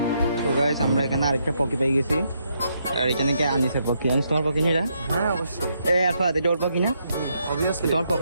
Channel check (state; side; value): inverted; both; correlation -0.77